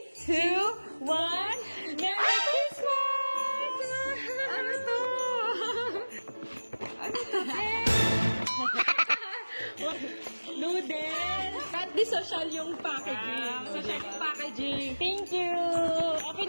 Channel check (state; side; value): inverted; both; correlation -1.00